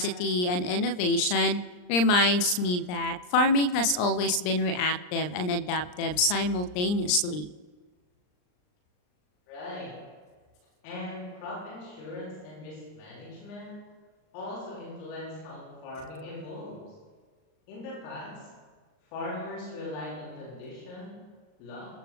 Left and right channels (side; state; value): right; late; 39 ms